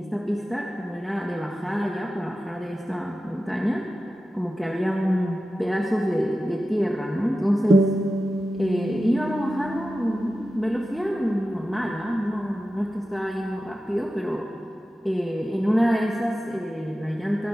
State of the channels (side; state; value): both; normal; correlation 0.93